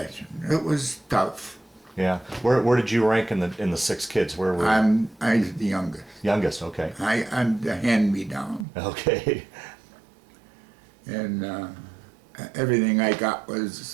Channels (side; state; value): left; drops out; at 8.7 s